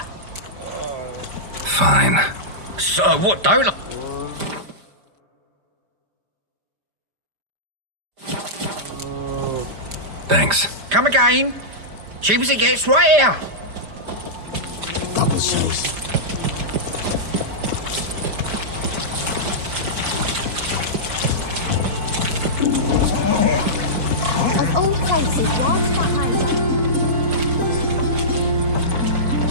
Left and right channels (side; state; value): left; late; 5.0 ms